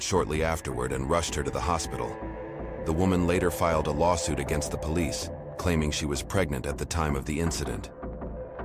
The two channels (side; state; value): both; identical; correlation 1.00